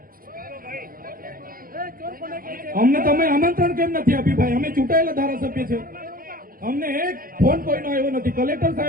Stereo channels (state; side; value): late; left; 0.42 ms